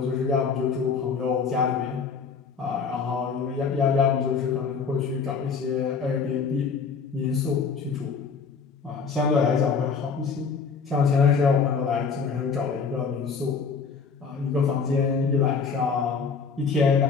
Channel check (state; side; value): quieter; right; 5.5 dB